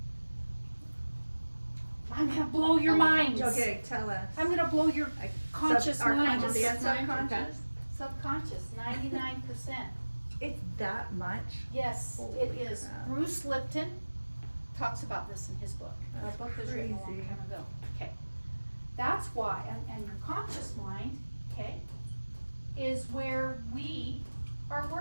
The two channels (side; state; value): both; inverted; correlation -1.00